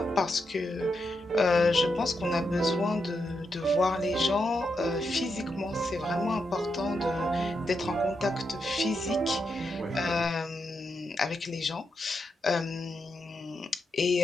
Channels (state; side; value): normal; both; correlation 0.84